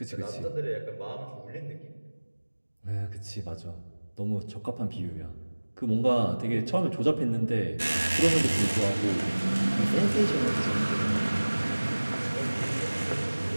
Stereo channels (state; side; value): inverted; both; correlation -1.00